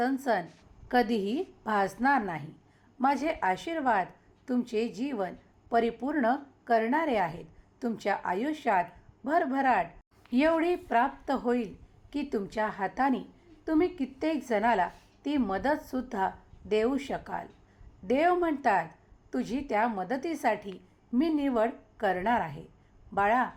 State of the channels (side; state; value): both; identical; correlation 1.00